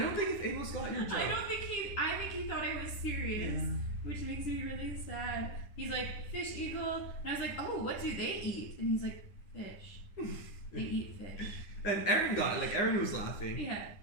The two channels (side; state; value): right; late; 10 ms